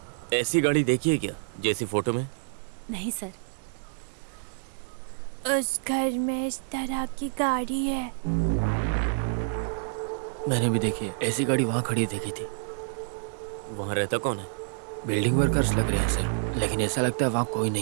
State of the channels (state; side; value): silent; left; digital silence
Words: ऐसी गाड़ी देखी है क्या जैसी फोटो में? नहीं सर। उस घर में इस तरह की गाड़ी है। मैंने भी देखी है, ऐसी गाड़ी वहाँ खड़ी देखी थी। वहाँ रहता कौन है? बिल्डिंग वर्कर्स लग रहे हैं सर, लेकिन ऐसा लगता है वहाँ कोई